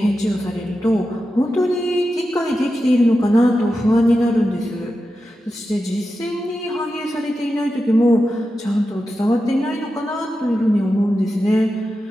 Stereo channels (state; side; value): normal; both; correlation 0.91